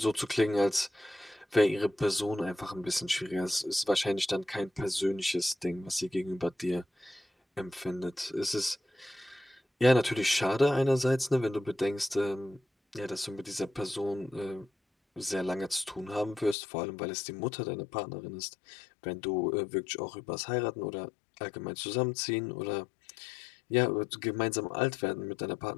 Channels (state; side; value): drops out; right; at 16.6 s